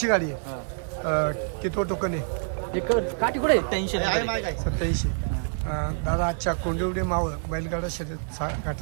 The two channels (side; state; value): left; silent; 60 dB below the other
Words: गाडी आहे. किती टोकन आहे? 87. दादा आजच्या कोंडिवडे मावळ बैलगाडा शर्यत